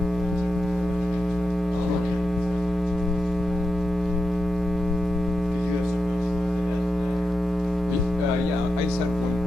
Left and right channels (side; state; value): both; normal; correlation 0.89